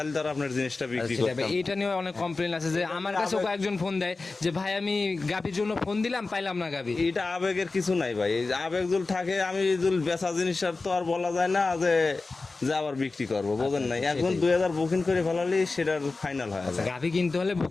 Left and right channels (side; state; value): right; quieter; 3.7 dB